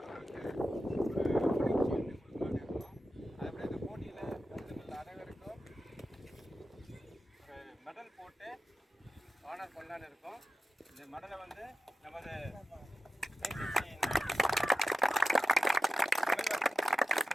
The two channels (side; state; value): both; normal; correlation 0.91